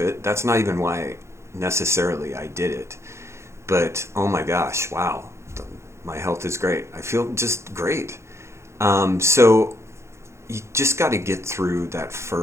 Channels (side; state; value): left; late; 0.13 ms